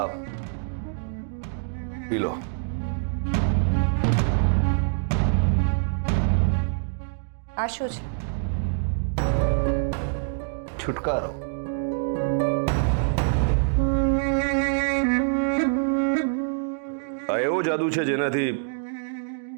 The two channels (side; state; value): left; silent; digital silence